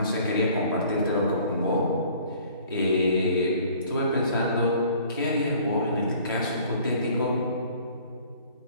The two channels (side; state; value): both; inverted; correlation -0.53